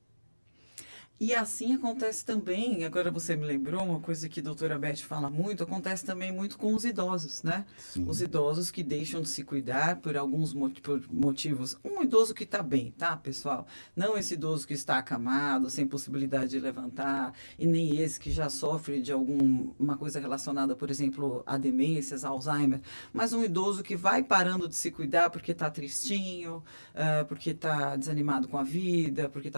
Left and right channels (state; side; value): inverted; both; correlation -1.00